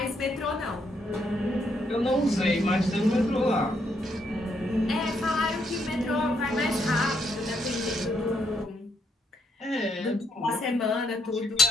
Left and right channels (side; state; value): both; normal; correlation 0.74